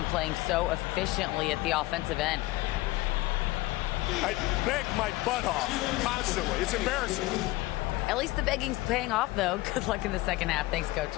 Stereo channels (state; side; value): quieter; right; 19.4 dB